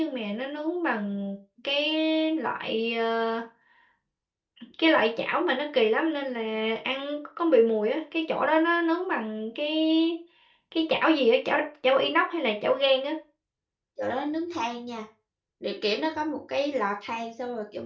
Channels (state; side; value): identical; both; correlation 1.00